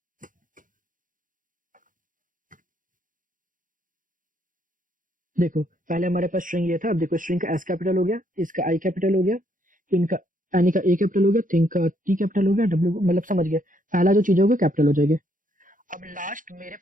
देखो पहले हमारे पास स्ट्रिंग ये था, अब देखो स्ट्रिंग का एस कैपिटल हो गया, इसका आई कैपिटल हो गया, इनका एनी का ए कैपिटल हो गया, थिंग का टी कैपिटल हो गया, डब्ल्यू मतलब समझ गया, पहला जो चीज होगा कैपिटल हो जाएगी। अब लास्ट मेरे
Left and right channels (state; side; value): late; left; 0.39 ms